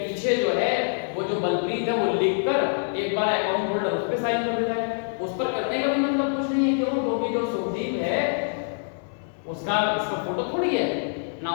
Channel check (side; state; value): right; silent; digital silence